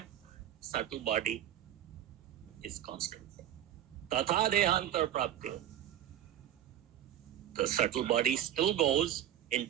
subtle body is constant. Tatha dehantar prapti. The subtle body still goes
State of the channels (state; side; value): quieter; left; 11.2 dB